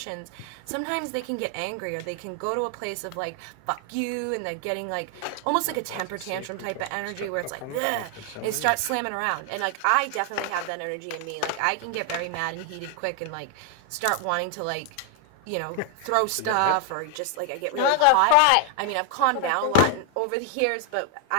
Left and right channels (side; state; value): both; different; correlation 0.00